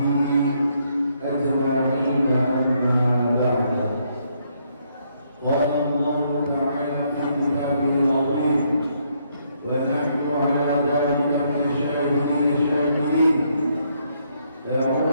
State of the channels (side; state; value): both; inverted; correlation -0.73